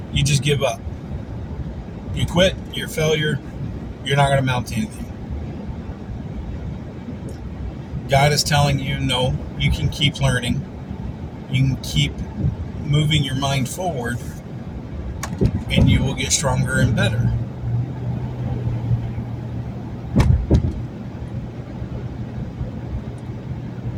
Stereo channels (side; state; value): both; identical; correlation 1.00